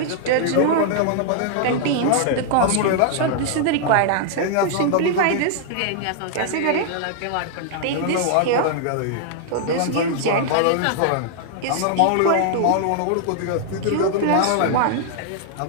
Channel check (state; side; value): different; both; correlation -0.01